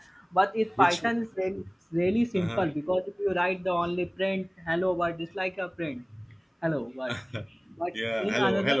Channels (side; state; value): both; identical; correlation 1.00